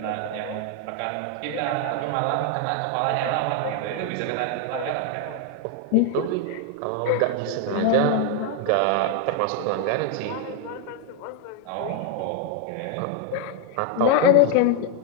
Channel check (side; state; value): both; different; correlation 0.00